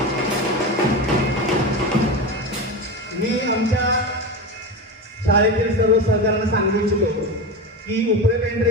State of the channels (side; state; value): both; normal; correlation 0.22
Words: मी आमच्या शाळेतील सर्व सहकार्यांना सांगू इच्छितो की उपरे